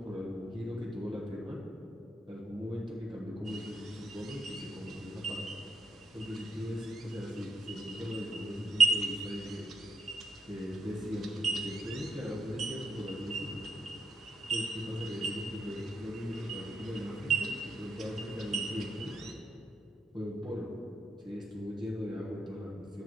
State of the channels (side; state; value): both; normal; correlation 0.75